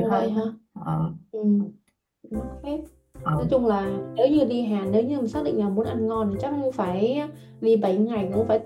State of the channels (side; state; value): both; identical; correlation 1.00